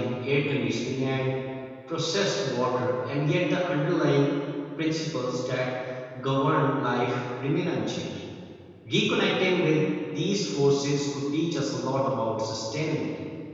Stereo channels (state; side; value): identical; both; correlation 1.00